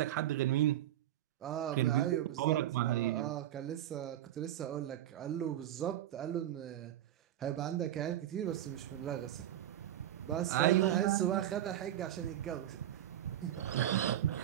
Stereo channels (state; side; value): quieter; left; 12.3 dB